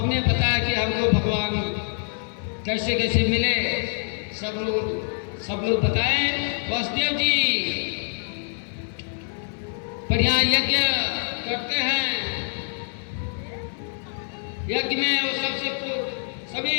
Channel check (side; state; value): right; silent; digital silence